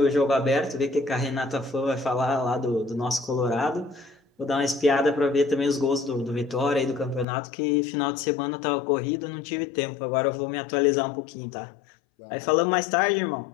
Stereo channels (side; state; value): right; drops out; at 7.2 s